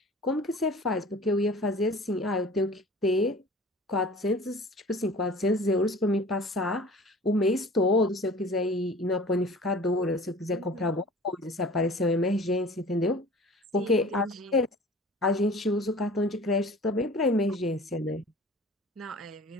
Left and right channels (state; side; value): normal; both; correlation 0.44